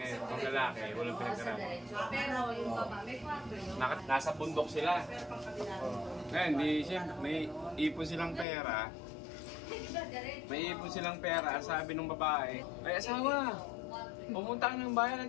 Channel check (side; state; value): right; drops out; at 8.5 s